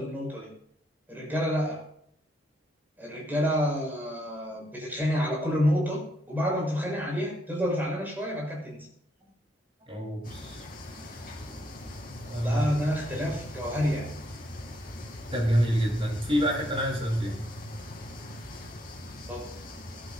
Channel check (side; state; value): both; normal; correlation 0.75